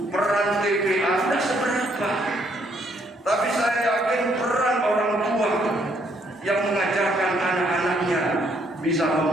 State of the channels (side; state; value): both; normal; correlation 0.70